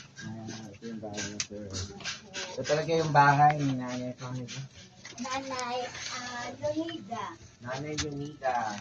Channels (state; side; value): identical; both; correlation 1.00